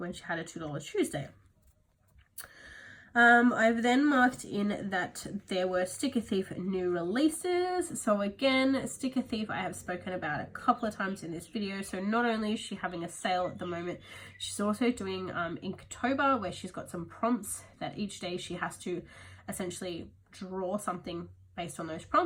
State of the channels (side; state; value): both; identical; correlation 1.00